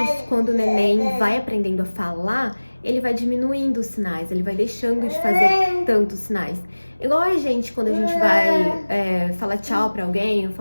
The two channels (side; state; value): both; inverted; correlation -1.00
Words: quando o neném vai aprendendo a falar, ele vai diminuindo os sinais, ele vai deixando de fazer tantos sinais. Igual a gente, quando a gente vai falar tchau pra alguém ou